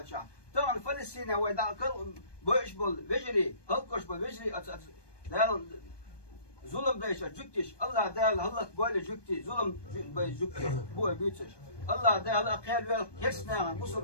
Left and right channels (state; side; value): late; right; 1.2 ms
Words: شع طبعا فلسطين ويدع كل بوش بالفجري هلكش بالفجري دال ظلم دايش جكتش الله دال هلك بول جكتي ظلم بجكتي بو بيتش الله دال أقيال ويل كيسنا بوصل